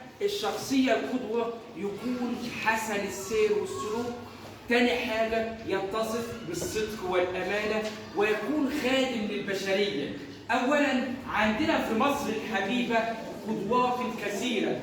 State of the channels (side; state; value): both; identical; correlation 1.00